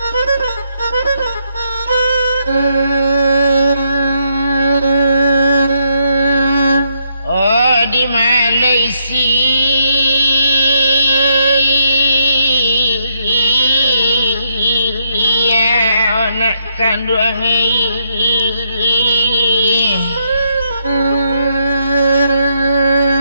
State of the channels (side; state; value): both; inverted; correlation -0.77